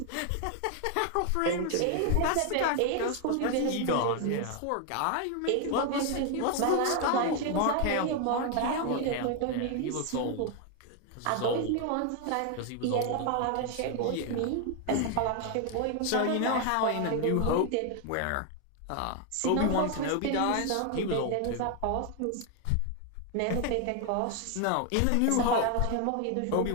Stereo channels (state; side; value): different; both; correlation 0.01